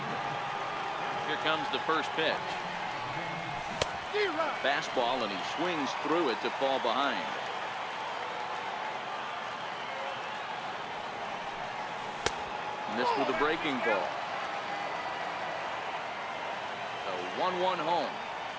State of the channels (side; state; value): both; identical; correlation 1.00